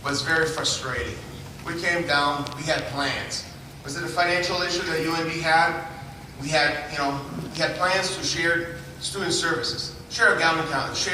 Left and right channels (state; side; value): identical; both; correlation 1.00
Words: was very frustrating. We came down, we had plans. Was it a financial issue that UNB had? We had plans to share student services, share a